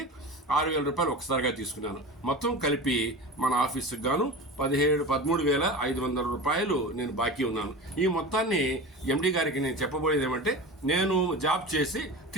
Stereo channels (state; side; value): normal; both; correlation 0.31